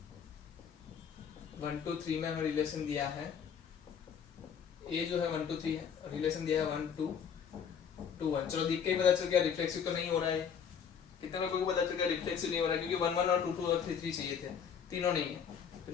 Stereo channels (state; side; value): quieter; right; 7.3 dB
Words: 1 2 3 में हमें रिलेशन दिया है, ए जो है 1 2 3 है, रिलेशन दिया है 1 2 2 1। चलो देख के ही पता चल गया रिफ्लेक्सिव तो नहीं हो रहा है। कितने लोगों को पता चल गया रिफ्लेक्सिव नहीं हो रहा है, क्योंकि 1 1 और 2 2 और 3 3 चाहिए थे, तीनों नहीं है, तो